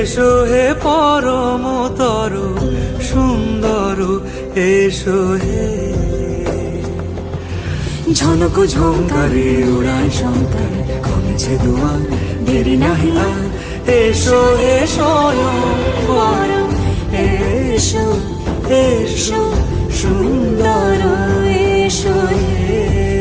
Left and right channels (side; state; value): both; identical; correlation 1.00